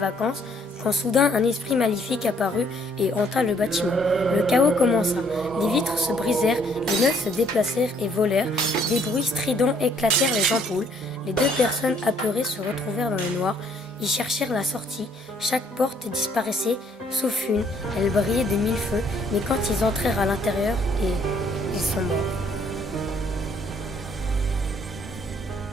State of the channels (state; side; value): normal; both; correlation 0.64